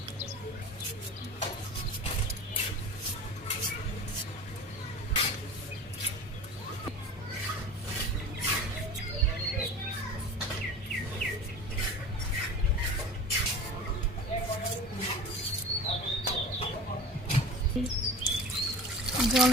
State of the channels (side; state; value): both; normal; correlation 0.36